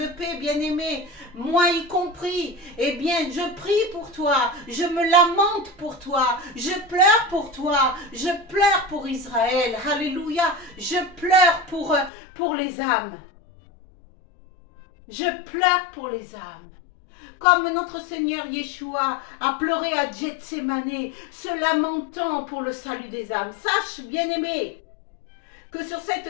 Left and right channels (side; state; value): right; drops out; at 12.1 s